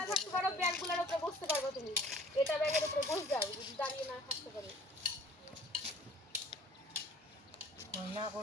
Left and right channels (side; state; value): both; normal; correlation 0.51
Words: থাকতে পারো ব্যাগগুলোর উপরে বসতে পারবে তুমি এটা ব্যাগের উপরে বসে যাও যদি দাঁড়িয়ে না থাকতে পারো না